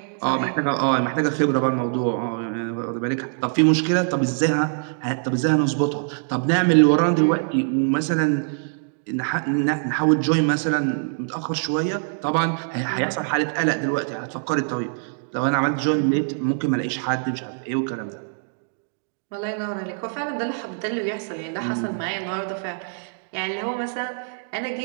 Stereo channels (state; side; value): silent; left; digital silence